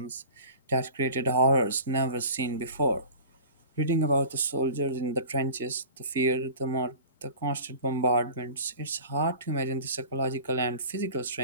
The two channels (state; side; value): inverted; both; correlation -0.41